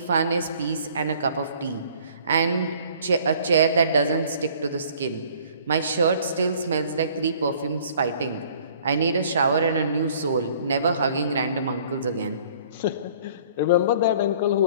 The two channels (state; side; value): inverted; both; correlation -0.54